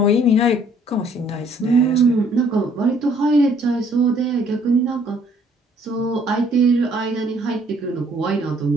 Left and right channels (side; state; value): both; normal; correlation 0.62